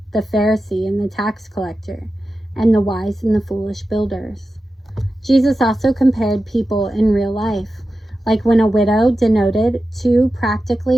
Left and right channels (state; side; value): normal; both; correlation 0.92